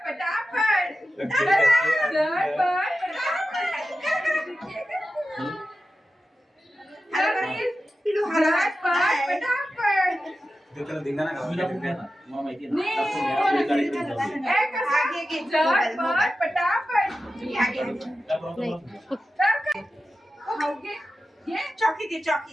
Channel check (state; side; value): normal; both; correlation 0.92